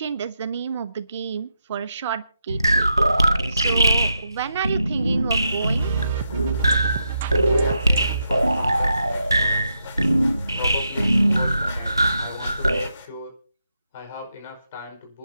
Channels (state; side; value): inverted; both; correlation -0.83